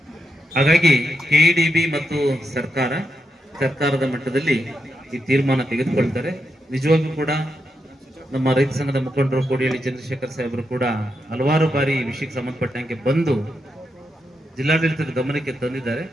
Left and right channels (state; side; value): normal; both; correlation 0.84